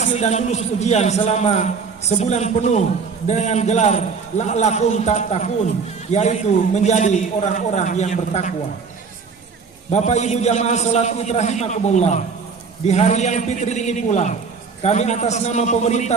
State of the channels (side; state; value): left; quieter; 5.3 dB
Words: dan lulus ujian selama sebulan penuh dengan gelar la'lakum tattaqun, yaitu menjadi orang-orang yang bertakwa. Bapak Ibu jamaah salat Id rahimakumullah, di hari yang fitri ini pula kami atas nama pemerintah